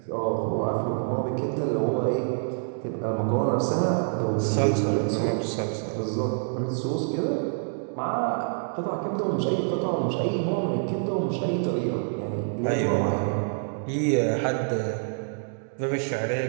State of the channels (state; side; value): silent; left; digital silence